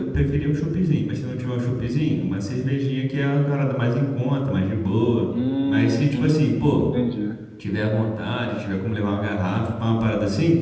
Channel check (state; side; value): identical; both; correlation 1.00